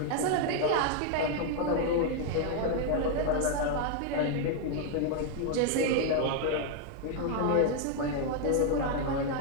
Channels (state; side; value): different; both; correlation 0.00